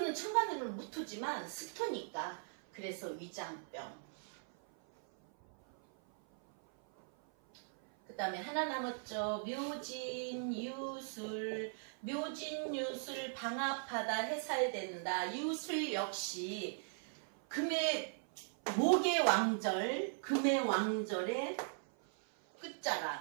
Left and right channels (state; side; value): silent; left; 52 dB below the other